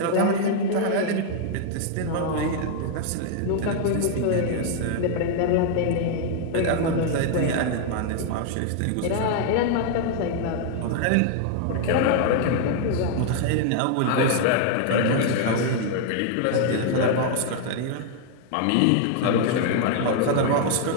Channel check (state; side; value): different; both; correlation 0.00